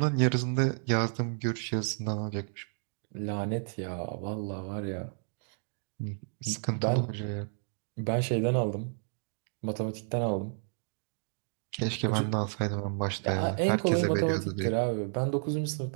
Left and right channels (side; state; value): left; silent; 57 dB below the other